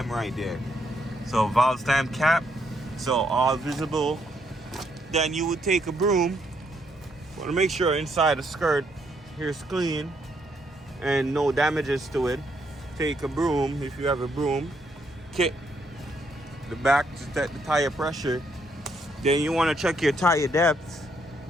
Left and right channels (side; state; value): both; normal; correlation 0.74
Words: right there. So valve stem cap, so all visible. Then you would take a broom. Want to make sure inside the skirt here's clean and no damages to it. Take a broom, if you have a broom, kick the back to check the tire pressure. Then you want to check your tire depth.